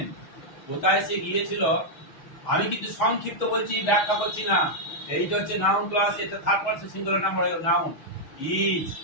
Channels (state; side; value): late; right; 6.3 ms